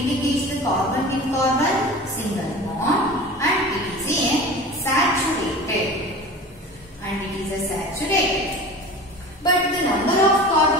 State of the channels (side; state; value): both; normal; correlation 0.36